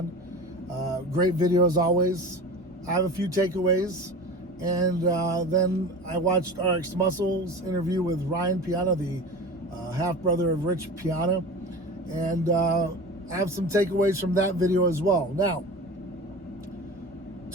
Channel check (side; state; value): both; normal; correlation 0.33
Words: great video as always. I have a few takeaways, and then I watched RX Muscle's interview with Ryan Piana, the half-brother of Rich Piana, and I have some takeaways from that video as well. Now,